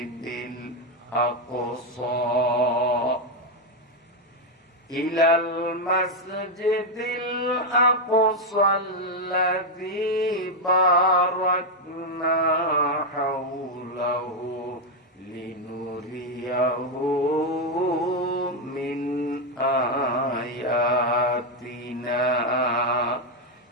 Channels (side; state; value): both; normal; correlation 0.03